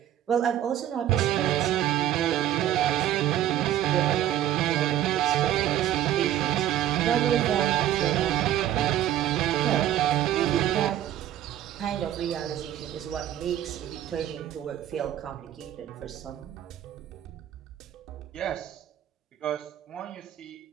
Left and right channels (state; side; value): quieter; left; 11.9 dB